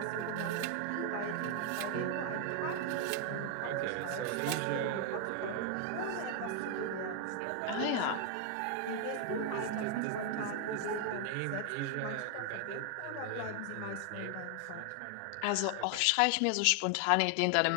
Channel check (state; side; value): different; both; correlation 0.00